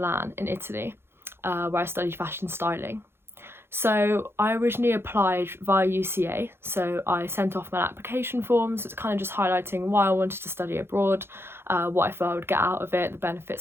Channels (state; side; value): late; left; 0.11 ms